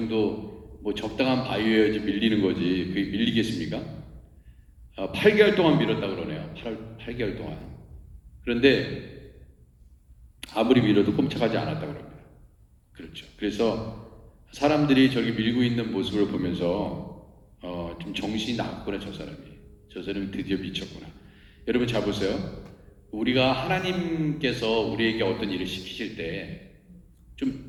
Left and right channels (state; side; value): identical; both; correlation 1.00